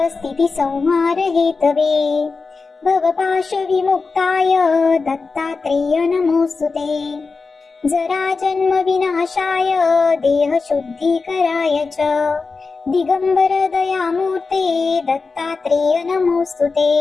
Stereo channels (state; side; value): quieter; right; 4.3 dB